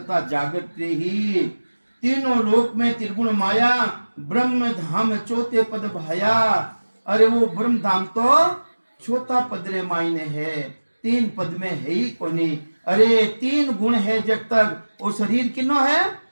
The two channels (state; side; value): inverted; both; correlation -1.00